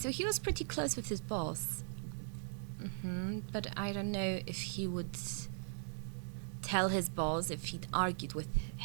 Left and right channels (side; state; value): left; silent; digital silence